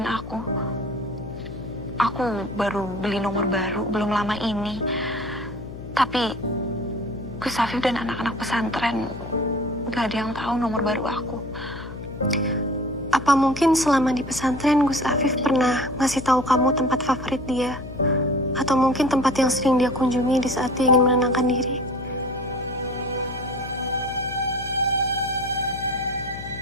aku. Aku baru beli nomor baru, belum lama ini. Tapi Gus Afif dan anak-anak pesantren gak ada yang tahu nomor baru aku. Apa mungkin selama di pesantren Gus Afif pernah ngasih tahu kamu tempat favorit dia? Atau mungkin tempat yang sering dia kunjungi di saat dia ingin menenangkan diri?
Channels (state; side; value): noise; left; hum, 12 dB below the sound